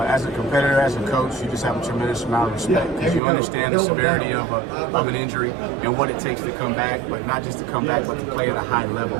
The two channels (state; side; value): drops out; left; at 3.2 s